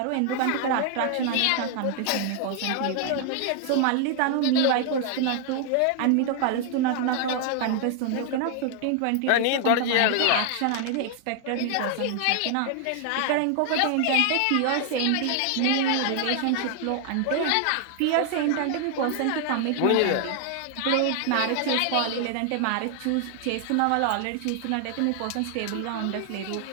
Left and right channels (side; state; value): both; different; correlation 0.00